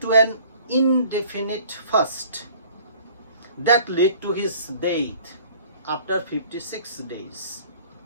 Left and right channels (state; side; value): inverted; both; correlation -0.51